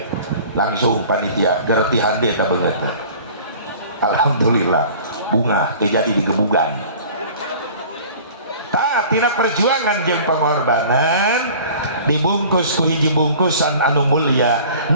langsung panitia gerti hande ka beungeut. Alhamdulillah bunga terjadi di gebugan. Tina perjuangan jeung pengorbanan dibungkus ku hiji bungkusan anu mulia.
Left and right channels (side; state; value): both; inverted; correlation -0.45